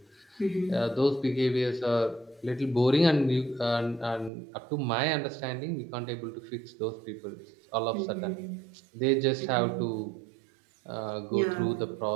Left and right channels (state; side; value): drops out; left; at 4.3 s